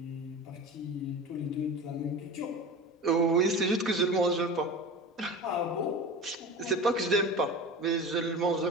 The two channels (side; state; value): both; normal; correlation 0.32